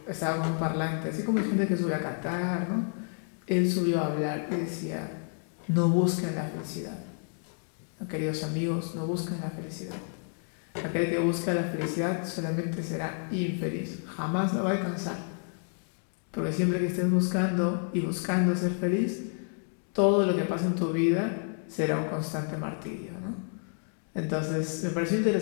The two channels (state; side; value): silent; right; 58 dB below the other